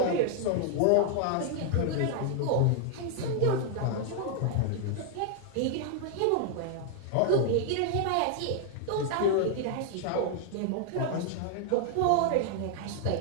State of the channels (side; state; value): both; different; correlation 0.00